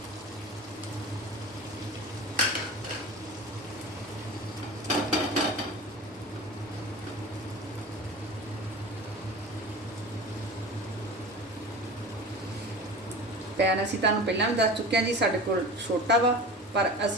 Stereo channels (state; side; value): normal; both; correlation 0.34